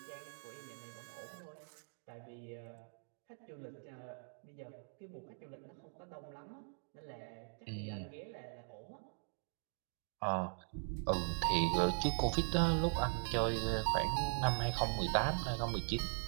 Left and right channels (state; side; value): silent; left; digital silence